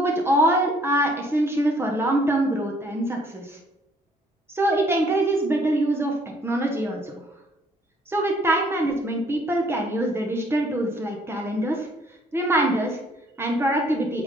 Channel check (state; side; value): normal; both; correlation 0.62